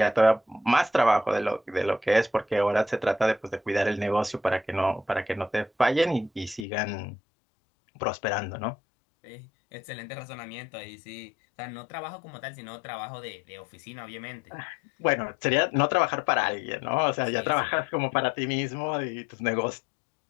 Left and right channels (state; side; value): drops out; right; at 6.7 s